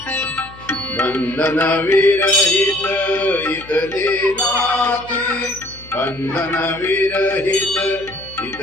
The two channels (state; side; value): noise; left; hum, 20 dB below the sound